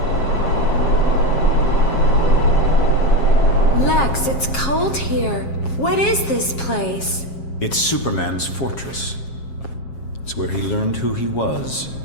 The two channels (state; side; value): late; right; 7.4 ms